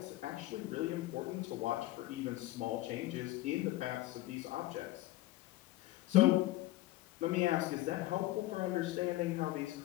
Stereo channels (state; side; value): quieter; right; 17.3 dB